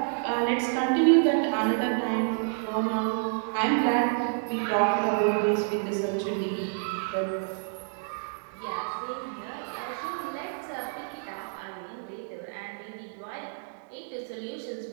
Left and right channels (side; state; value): left; silent; digital silence